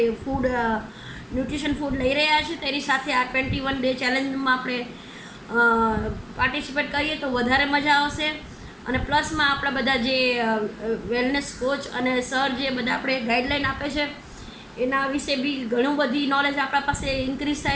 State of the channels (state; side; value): identical; both; correlation 1.00